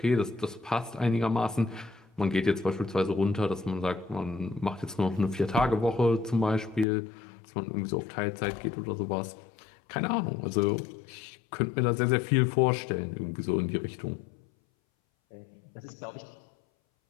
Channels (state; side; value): drops out; right; at 6.9 s